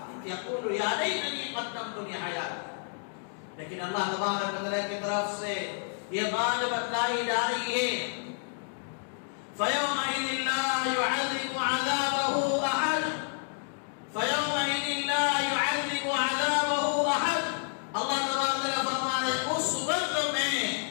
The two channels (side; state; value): right; silent; digital silence